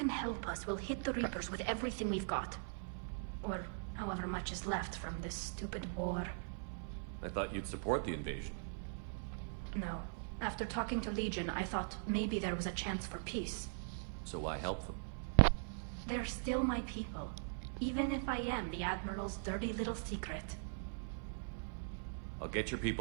help us, we'll hit the Reapers with everything we've got. Or however much is left from this stupid war. I thought you'd support the invasion. No. After talking to Legion, I thought maybe there was a chance for peace. So why help them? They're still my people. Even if I am the Admiral's dirty little secret. I'll get your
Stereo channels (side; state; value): left; silent; 50 dB below the other